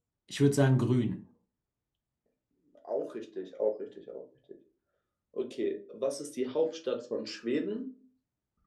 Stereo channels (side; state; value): both; identical; correlation 1.00